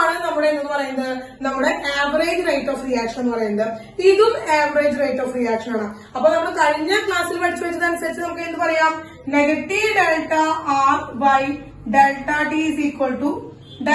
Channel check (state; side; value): identical; both; correlation 1.00